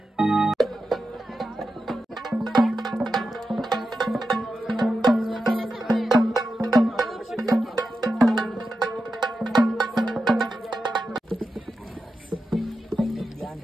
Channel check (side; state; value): both; normal; correlation 0.90